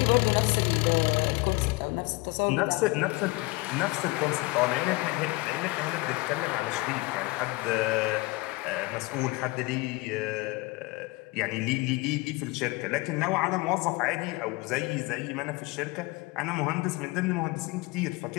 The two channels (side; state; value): right; quieter; 23.6 dB